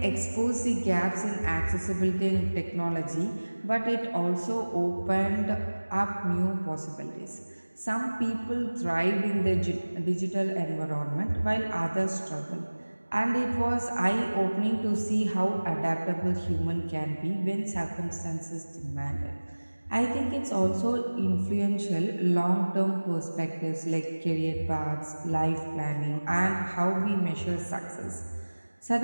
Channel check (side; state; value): both; inverted; correlation -1.00